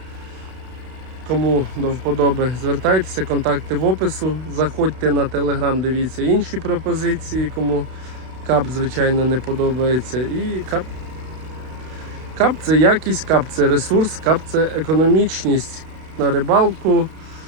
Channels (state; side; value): late; left; 32 ms